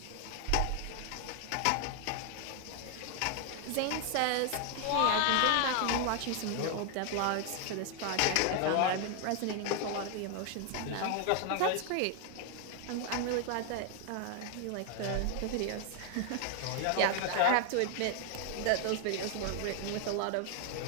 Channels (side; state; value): both; different; correlation 0.00